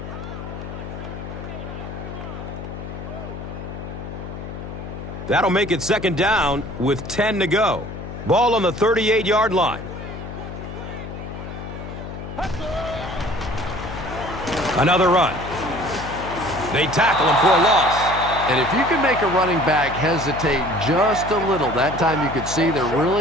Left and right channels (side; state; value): left; noise; hum, 9 dB below the sound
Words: That'll make it second down with 10 to go. Ball on the 38-yard line. Another run. They tackle him for a loss. And if you can make a running back hesitate just a little, that time you could see there